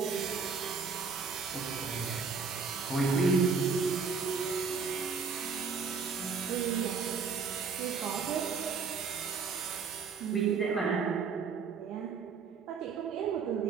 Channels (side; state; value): left; quieter; 5.3 dB